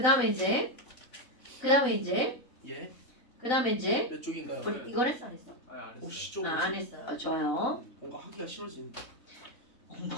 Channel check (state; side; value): late; right; 4.0 ms